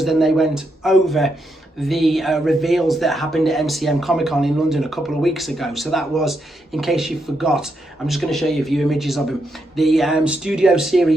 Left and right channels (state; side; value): normal; both; correlation 0.81